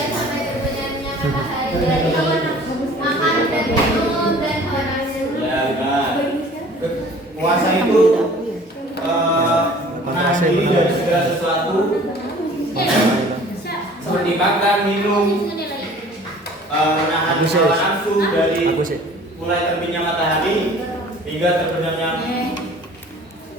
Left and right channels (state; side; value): normal; both; correlation 0.49